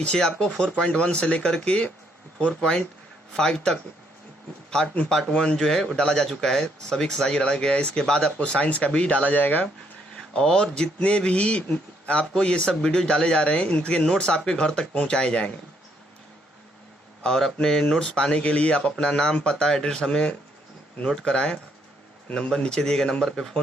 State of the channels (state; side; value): normal; both; correlation 0.71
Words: आपको 4.1 से लेकर के 4.5 तक पार्ट 1 जो है वो डाला जा चुका है, सभी एक्सरसाइज डाला गया है। इसके बाद आपको साइंस का भी डाला जाएगा और जितने भी आपको ये सब वीडियो डाले जा रहे हैं इनके नोट्स आपके घर तक पहुँचाए जाएंगे। और अपने नोट्स पाने के लिए आप अपना नाम, पता, एड्रेस हमें नोट कराएं। नंबर नीचे दिए गए नंबर पे